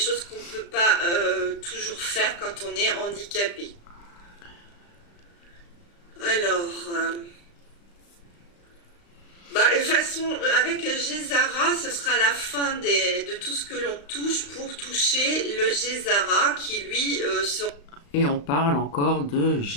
qu'on ne peut pas toujours faire quand on est handicapé. Alors, bah, de toute façon, avec Gézara, ce sera la fin de tout ce que l'on touche pour toucher le Gézara qui, lui, sera Et on parle encore de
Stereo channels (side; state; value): right; late; 35 ms